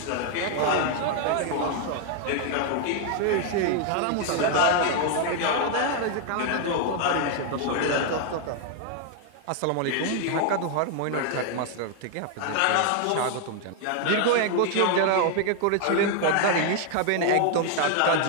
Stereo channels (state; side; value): different; both; correlation 0.00